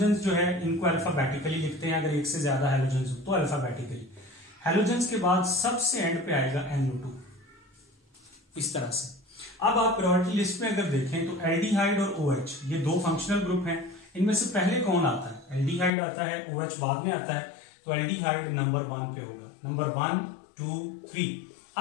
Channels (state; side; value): drops out; right; at 15.9 s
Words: जो है इनको अल्फाबेटिकली लिखते हैं, अगर एक से ज्यादा हैलोजेंस हो तो अल्फाबेटिकली। हैलोजेंस के बाद सबसे एंड पे आएगा NO2, इस तरह से। अब आप प्रायोरिटी लिस्ट में अगर देखें तो एल्डिहाइड और OH ये दो फंक्शनल ग्रुप हैं। इनमें से पहले कौन आता है? एल्डिहाइड आता है, OH बाद में आता है। तो एल्डिहाइड नंबर 1 पे होगा, नंबर 1 2 3।